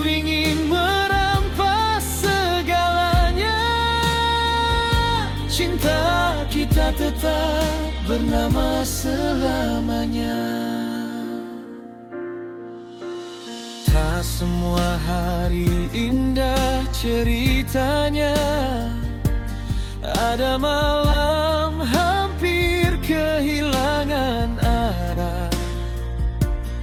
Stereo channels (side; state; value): both; identical; correlation 1.00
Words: ingin merampas segalanya, cinta kita tetap bernama selamanya. Tak semua hari indah ceritanya, ada malam hampir kehilangan arah,